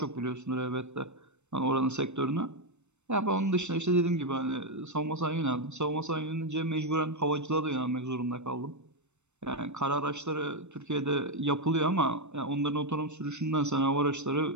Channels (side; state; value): left; late; 0.82 ms